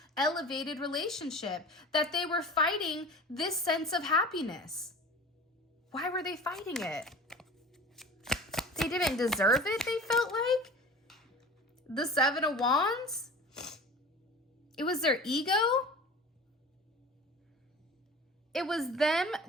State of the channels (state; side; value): normal; both; correlation 0.38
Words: elevated relationship, that they were fighting this sense of happiness. Why were they fighting it? They didn't deserve it, they felt like. The Seven of Wands. It was their ego. It was them,